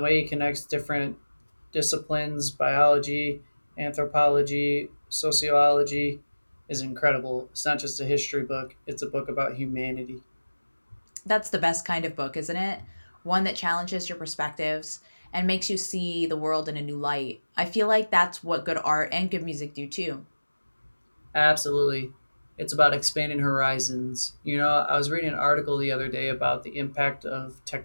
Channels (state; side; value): inverted; both; correlation -1.00